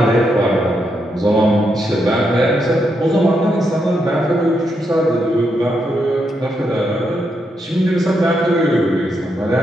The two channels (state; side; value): normal; both; correlation 0.81